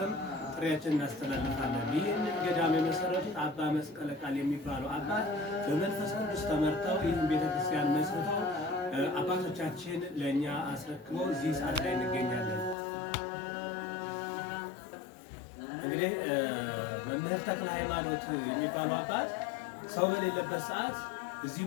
ጥሪያችን እናስተላልፋለን። ይህንን ገዳም የመሰረቱት አባ መስቀለ ቃል የሚባሉ አባት በመንፈስ ቅዱስ ተመርተው ይህን ቤተክርስቲያን መስርተው አባቶቻችን ለእኛ አስረክበው እዚህ ሰዓት ላይ እንገኛለን። እንግዲህ መምህር ተክለ ሃይማኖት የሚባሉ አባት ሰው በሌለበት ሰዓት እዚህ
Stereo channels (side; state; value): right; drops out; at 12.8 s